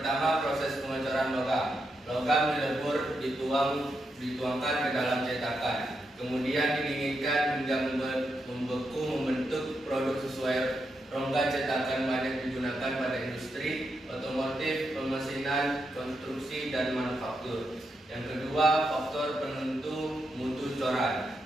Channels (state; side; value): normal; both; correlation 0.84